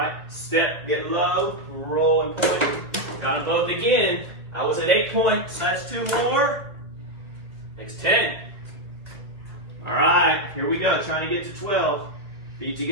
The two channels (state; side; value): late; left; 1.6 ms